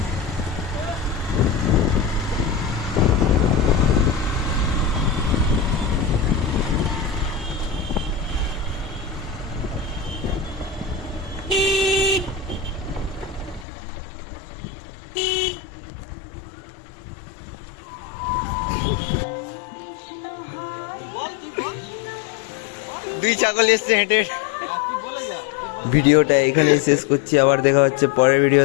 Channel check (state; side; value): drops out; right; at 13.7 s